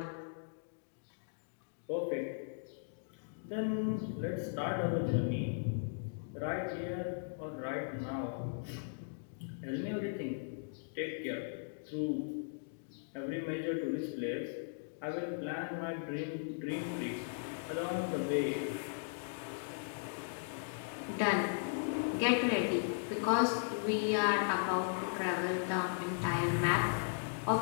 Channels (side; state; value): right; silent; digital silence